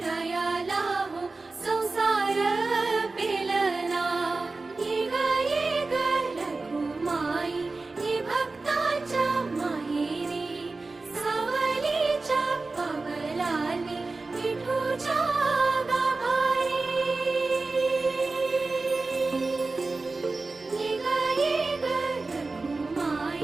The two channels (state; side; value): quieter; left; 3.6 dB